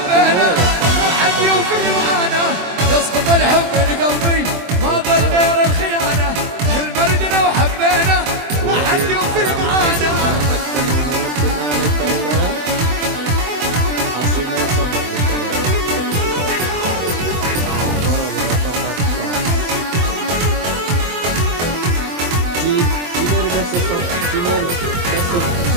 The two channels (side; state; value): left; late; 24 ms